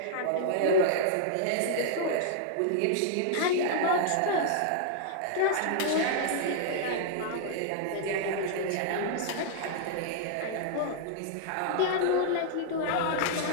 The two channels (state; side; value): different; both; correlation -0.01